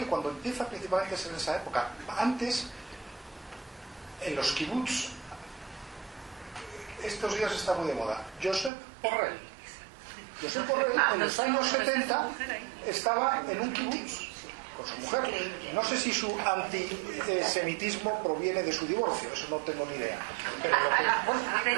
cuando empieza principalmente a ser en esa época, antes, en los kibbutz, estos días está muy de moda, Josep Borrell. Josep Borrell en los años 70 estaba en un kibbutz con su mujer. No sé si su antisemitismo proviene de su divorcio, eso no tengo ni idea.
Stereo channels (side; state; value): left; drops out; at 8.7 s